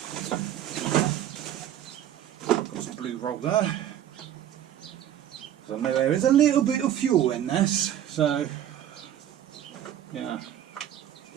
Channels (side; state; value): left; quieter; 11.0 dB